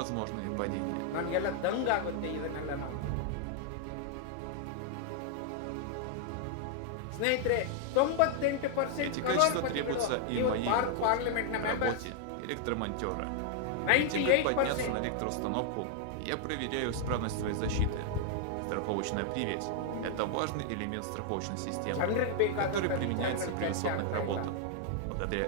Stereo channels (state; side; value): different; both; correlation 0.00